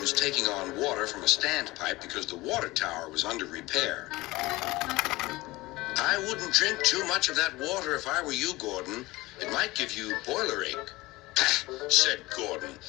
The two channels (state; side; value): quieter; right; 20.4 dB